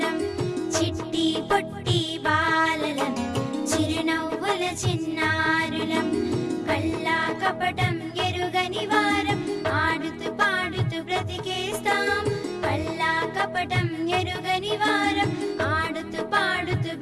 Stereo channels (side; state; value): both; identical; correlation 1.00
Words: చిట్టి పొట్టి బాలలం, చిరునవ్వుల చిన్నారులం, కల్లా కపటం ఎరుగని వారం, ఆడుతూ పాడుతూ బ్రతికేస్తాం. కల్లా కపటం ఎరుగని వారం, ఆడుతూ పాడుతూ